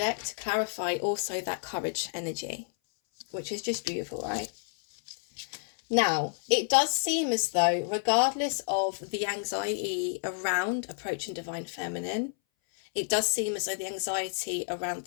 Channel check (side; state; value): right; silent; 58 dB below the other